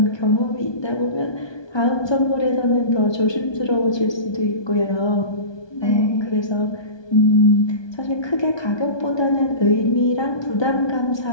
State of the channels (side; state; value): right; late; 1.2 ms